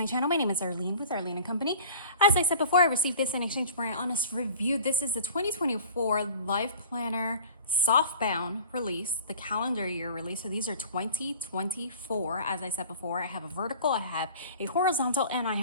channel, my name is Arlene with Arlene and Company. As I said before, I received this in exchange for an honest review. This is the 2024 LifePlanner Softbound release, the calendar year release. So these are 2024. As I said before, I have a vertical, I have a horizontal, and I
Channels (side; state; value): both; inverted; correlation -0.43